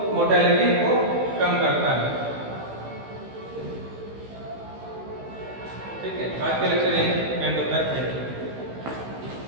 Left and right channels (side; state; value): left; late; 15 ms